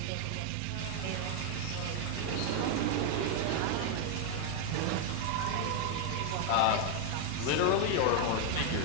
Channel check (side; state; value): both; different; correlation 0.00